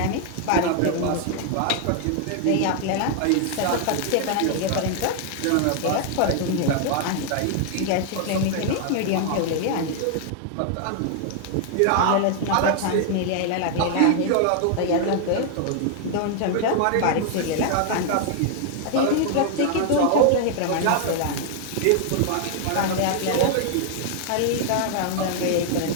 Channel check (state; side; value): different; both; correlation 0.00